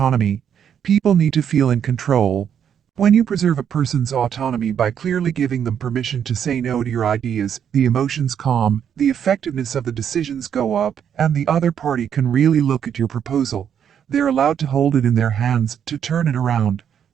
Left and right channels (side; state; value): left; quieter; 8.6 dB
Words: People need to feel in control. When you preserve a person's autonomy by clearly giving them permission to say no to your ideas, the emotions calm, the effectiveness of the decisions go up, and the other party can really look at your proposal. They're allowed to hold it in their hands, to turn it around.